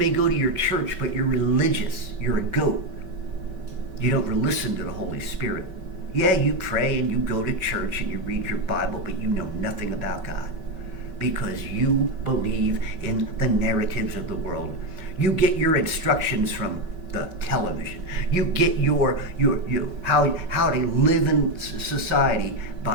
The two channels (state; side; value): late; left; 5.2 ms